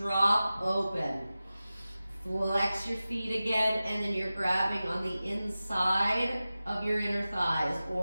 open. Flex your feet again, and then you're grabbing on the inside of your inner thighs,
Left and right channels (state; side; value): inverted; both; correlation -0.95